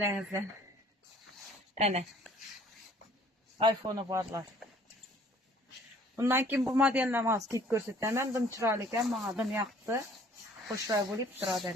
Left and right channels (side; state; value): both; normal; correlation 0.56